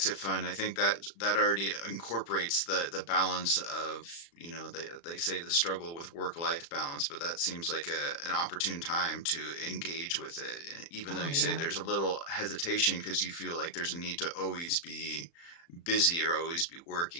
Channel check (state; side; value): late; right; 35 ms